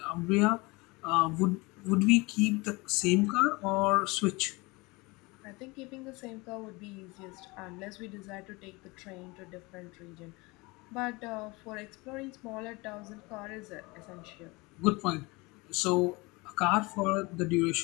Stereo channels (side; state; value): right; quieter; 24.7 dB